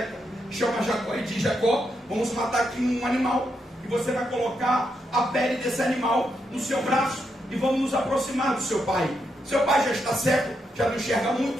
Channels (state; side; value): normal; both; correlation 0.81